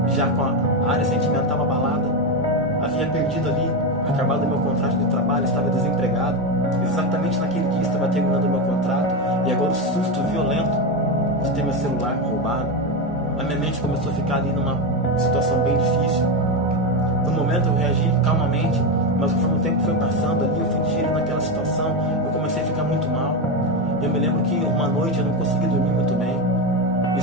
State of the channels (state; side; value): normal; both; correlation 0.12